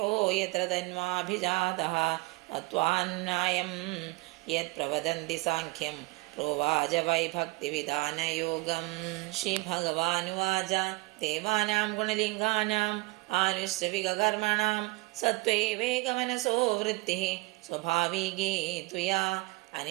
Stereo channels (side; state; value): left; quieter; 24.5 dB